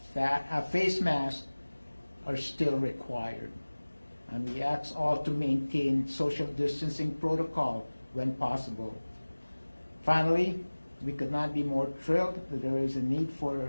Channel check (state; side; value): inverted; both; correlation -1.00